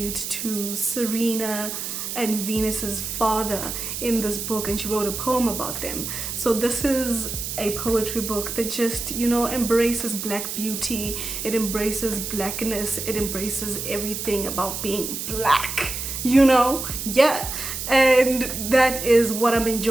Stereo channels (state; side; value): noise; right; hiss, 5 dB below the sound